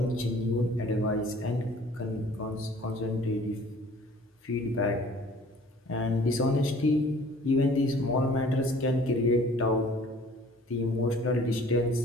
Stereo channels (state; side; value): normal; both; correlation 0.51